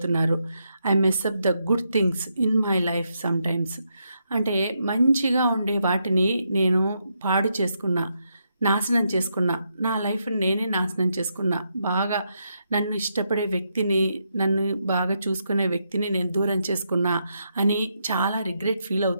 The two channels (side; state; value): both; inverted; correlation -0.81